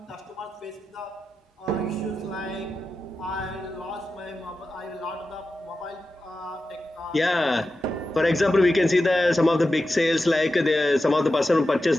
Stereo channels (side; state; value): both; normal; correlation 0.92